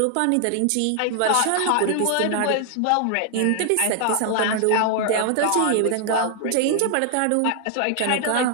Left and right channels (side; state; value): both; different; correlation 0.00